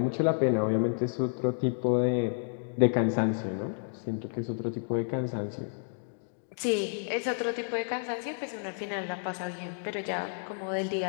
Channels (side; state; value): right; silent; digital silence